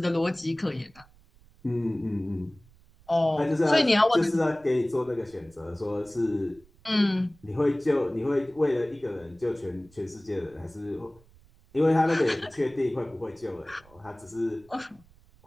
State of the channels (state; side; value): noise; right; rumble, 28 dB below the sound